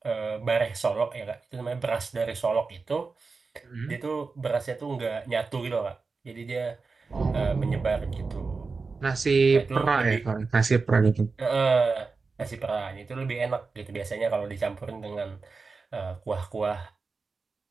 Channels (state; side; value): quieter; left; 4.4 dB